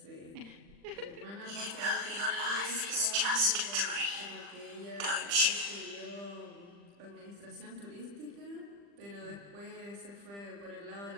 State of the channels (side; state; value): left; late; 40 ms